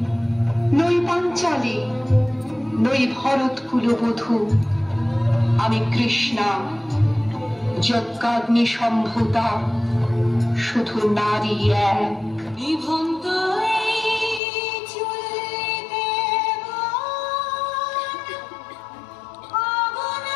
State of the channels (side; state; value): right; drops out; at 14.4 s